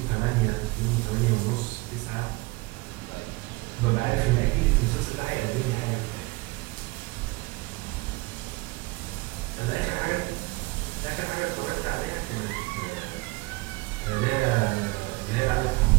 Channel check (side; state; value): left; quieter; 23.5 dB